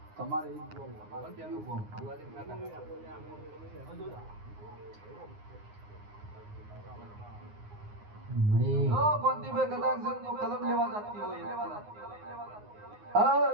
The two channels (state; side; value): late; left; 9.6 ms